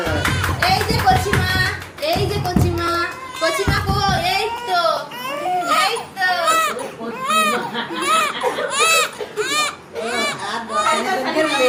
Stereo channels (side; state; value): both; identical; correlation 1.00